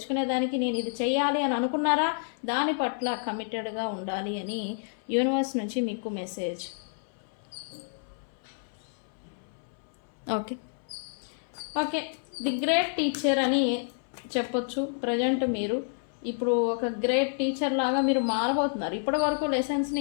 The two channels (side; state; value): right; silent; 58 dB below the other